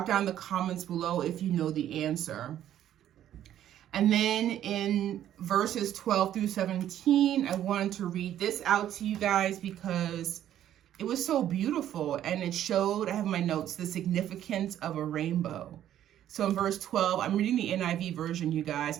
down in the comments below if you know the answer. And then in verses 12 through 17, I wanted to read this out to you guys because it was so beautiful and it showed, I have in my notes, the significance of a rainbow. So in verse 12, I'm reading the NIV version, you guys,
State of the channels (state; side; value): quieter; left; 11.4 dB